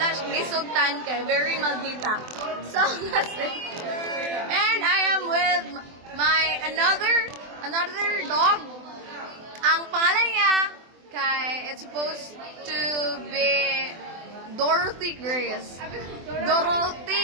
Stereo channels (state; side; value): late; left; 24 ms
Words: siyang gisugtan kay very maldita. So that's it. And I am with my another dog. Ang pangalan niya kay it's supposed to be Dorothy Grace.